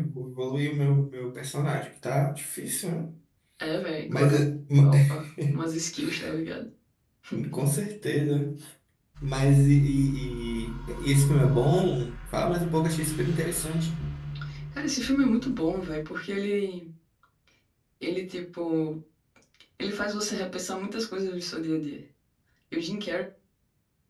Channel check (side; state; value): both; identical; correlation 1.00